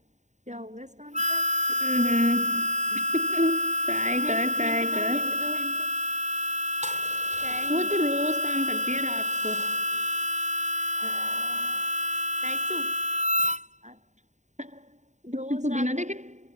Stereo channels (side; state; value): left; late; 0.34 ms